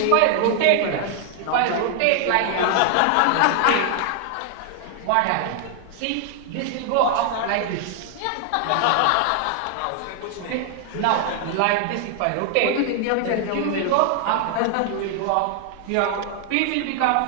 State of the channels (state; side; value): different; both; correlation 0.00